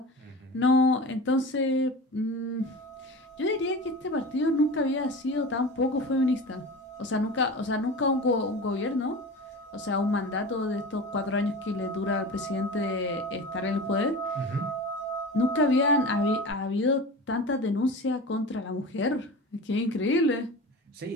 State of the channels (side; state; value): both; normal; correlation 0.32